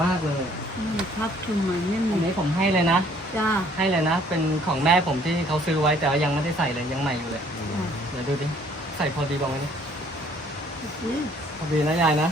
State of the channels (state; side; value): normal; both; correlation 0.60